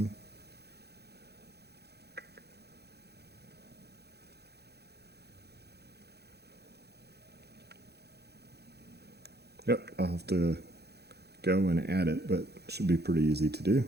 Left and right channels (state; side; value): late; left; 0.48 ms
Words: Yep, I'll have to go and add it, but it should be pretty easy to do.